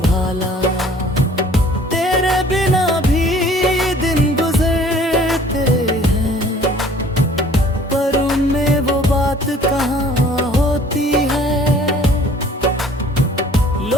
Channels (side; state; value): both; normal; correlation 0.53